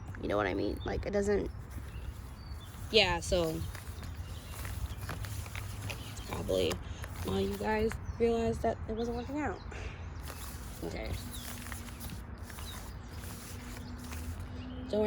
You know what I mean? Like it doesn't. Yeah. So it's probably why you guys realized that it wasn't working out. Okay. Don't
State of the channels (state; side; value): identical; both; correlation 1.00